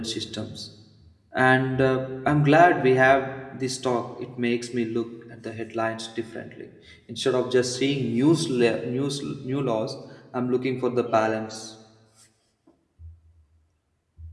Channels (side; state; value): both; identical; correlation 1.00